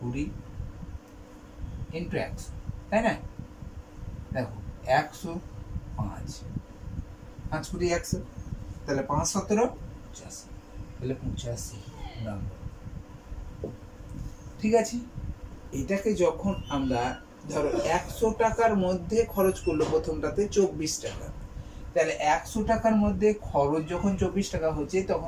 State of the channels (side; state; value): both; identical; correlation 1.00